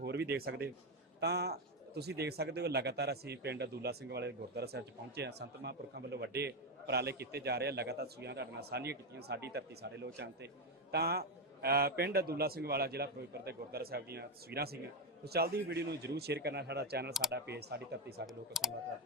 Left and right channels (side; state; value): both; normal; correlation 0.08